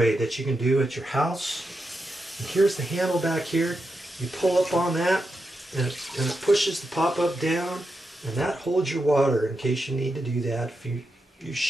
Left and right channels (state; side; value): normal; both; correlation 0.87